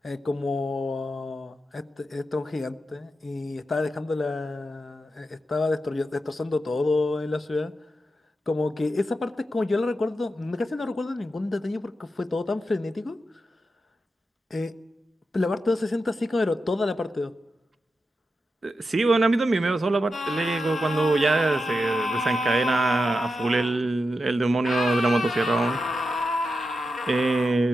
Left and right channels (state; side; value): normal; both; correlation 0.88